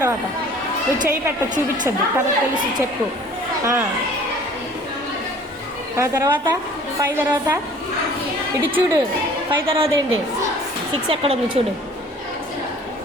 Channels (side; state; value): both; normal; correlation 0.50